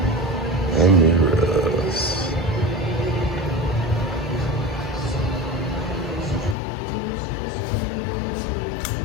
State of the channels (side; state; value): right; drops out; at 6.6 s